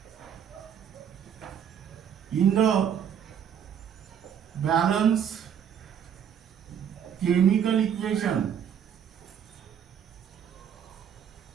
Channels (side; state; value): left; quieter; 8.6 dB